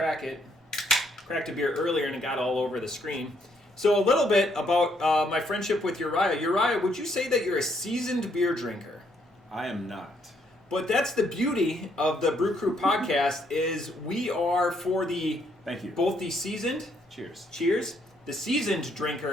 it. Cracked a beer earlier and it got all over the screen. So a little bit about my friendship with Uriah. Uriah, would you say that you're a seasoned beer drinker? I am not. But that's the beauty of the Brew Crew podcast is we are for the Thank you. Both the seasoned cheers, the seasoned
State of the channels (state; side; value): normal; both; correlation 0.71